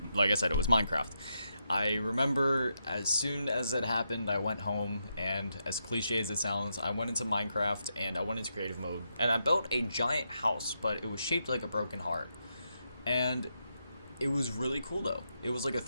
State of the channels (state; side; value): inverted; both; correlation -0.83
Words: like I said, it was Minecraft. I remember as soon as it happened, I went home, and as cliche as it sounds, I went into Minecraft and I went into creative mode, and I built a giant house, but it was shaped like a broken heart. And it was really cool though. It was like a